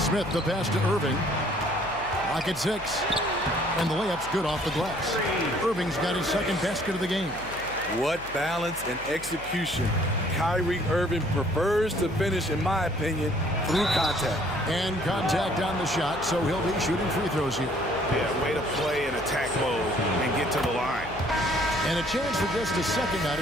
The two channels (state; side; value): noise; left; hum, 17 dB below the sound